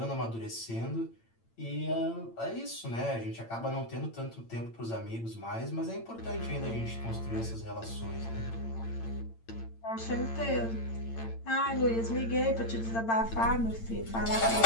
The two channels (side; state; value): right; late; 8.8 ms